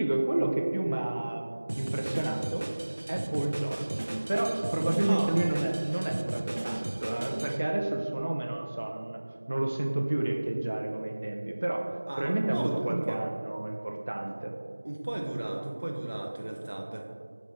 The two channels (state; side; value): inverted; both; correlation -1.00